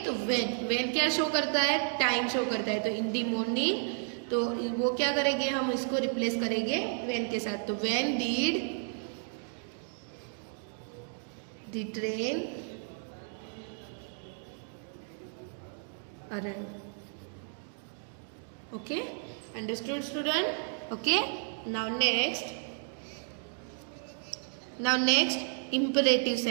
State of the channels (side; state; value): left; silent; 55 dB below the other